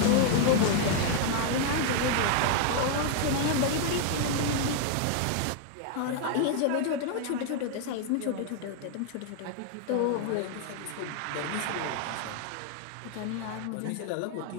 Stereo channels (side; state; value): both; different; correlation 0.00